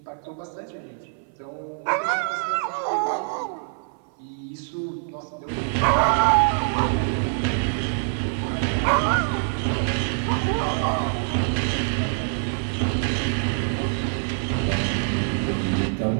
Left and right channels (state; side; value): silent; left; 61 dB below the other